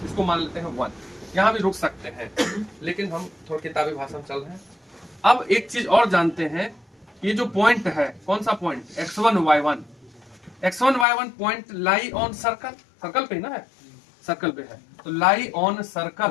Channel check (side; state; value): right; drops out; at 11.1 s